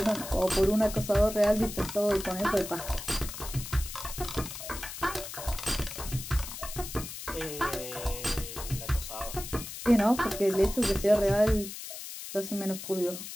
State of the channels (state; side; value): noise; left; hiss, 9 dB below the sound